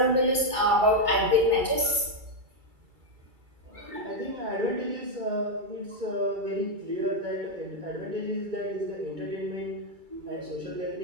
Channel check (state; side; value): late; left; 2.3 ms